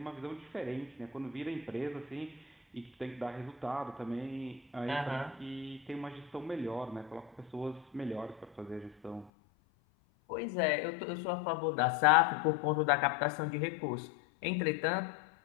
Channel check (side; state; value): right; drops out; at 9.3 s